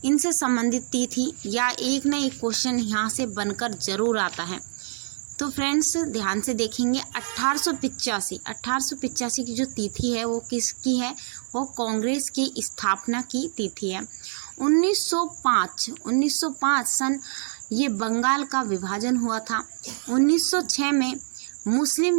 इनसे संबंधित तिथि या एक न एक क्वेश्चन यहाँ से बनकर जरूर आता है। तो फ्रेंड्स, ध्यान से देखेंगे। 1885 की जो तिथि है वो किसकी है? वो कांग्रेस की स्थापना की तिथि है। 1905 सन ये बंगाल का विभाजन हुआ था। 1906 में मुस्लिम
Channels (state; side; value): silent; left; digital silence